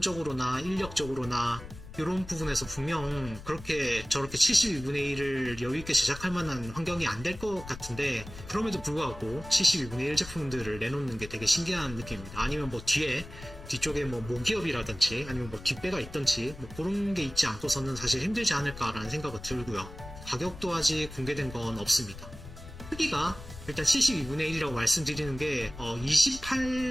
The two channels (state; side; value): noise; left; rumble, 14 dB below the sound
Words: 인력적으로나 이런 부분에서 분명 그렇게 저렇게 72분의 1을 여유있게 제작할 만한 환경이 안 될 것 같은데 그럼에도 불구하고 72분의 1 제품들을 내놓는 게 되게 신기한 느낌입니다. 아니면 뭐 뒤쪽에 뭐 모기업이라든지 아니면 뭐 뒷배가 있든지 뭐 그런 게 있지 않고서는 사실 힘들지 않을까라는 생각이 들고요. 가격도 아직 공개된 건 없습니다. 크기가 일단 72분의 1이라고 말씀드리는 게